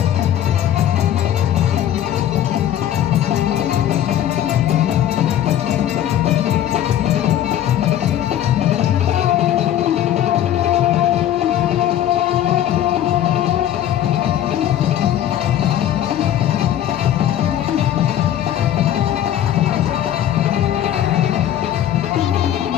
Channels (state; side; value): quieter; right; 11.3 dB